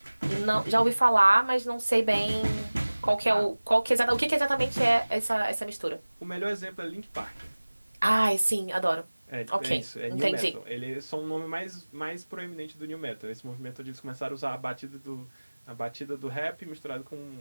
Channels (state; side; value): inverted; both; correlation -1.00